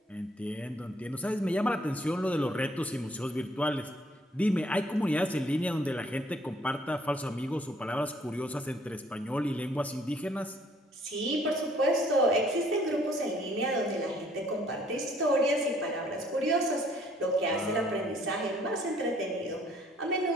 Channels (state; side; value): normal; both; correlation 0.62